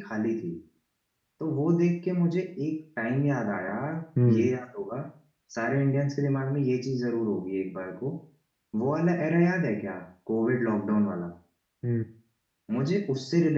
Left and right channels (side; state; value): both; identical; correlation 1.00